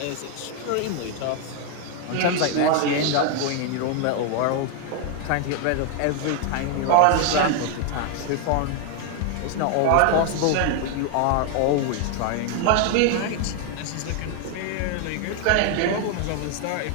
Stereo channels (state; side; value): different; both; correlation 0.00